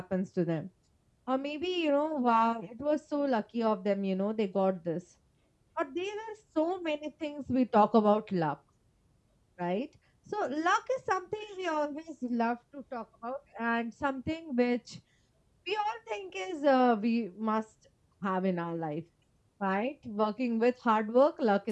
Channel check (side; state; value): both; identical; correlation 1.00